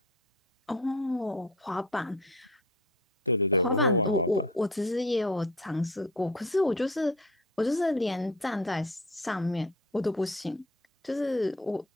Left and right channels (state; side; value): normal; both; correlation 0.41